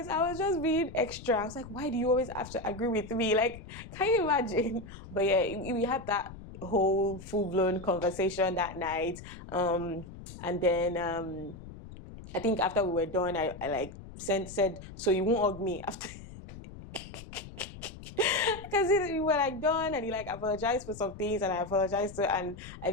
I was just being extra. I was like, why do you always have to agree with me? Like, can you imagine? But yeah, we had that whole full-blown conversation that night. And then I think after we were done, I like said, so you won't hug me after. Because we were like done, and he like apologized for some things, and I apologized and I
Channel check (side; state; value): left; noise; rumble, 14 dB below the sound